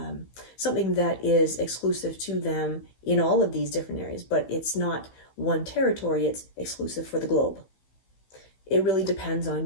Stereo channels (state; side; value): late; right; 16 ms